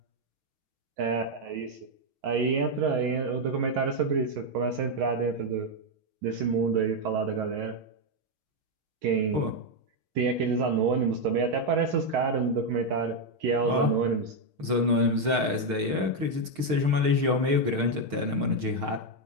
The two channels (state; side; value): late; left; 6.5 ms